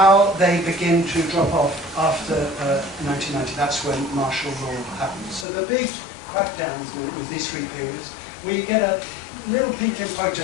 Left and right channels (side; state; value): right; drops out; at 5.5 s